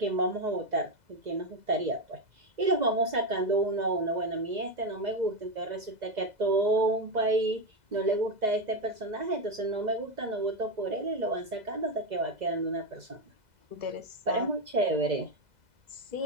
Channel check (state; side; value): late; left; 2.0 ms